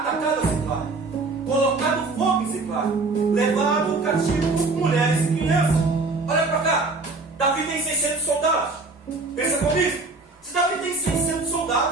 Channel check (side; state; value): left; quieter; 3.7 dB